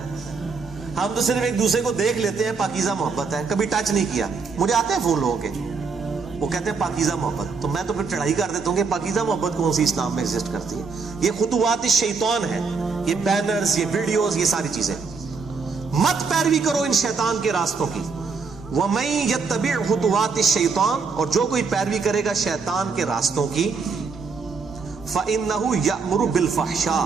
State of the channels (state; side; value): quieter; left; 4.9 dB